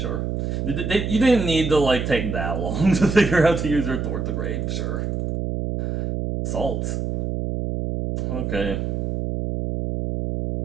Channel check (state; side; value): noise; right; hum, 2 dB below the sound